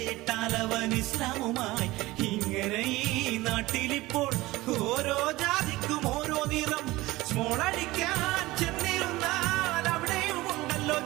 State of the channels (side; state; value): left; quieter; 19.2 dB